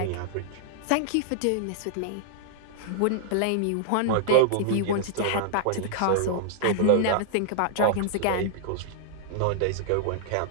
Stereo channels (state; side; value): different; both; correlation -0.01